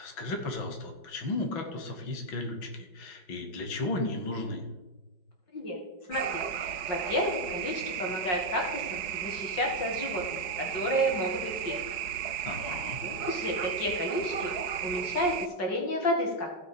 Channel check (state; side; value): late; right; 5.5 ms